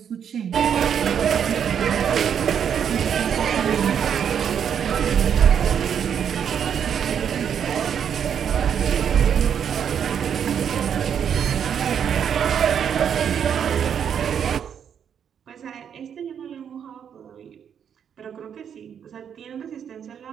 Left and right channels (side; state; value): left; quieter; 8.2 dB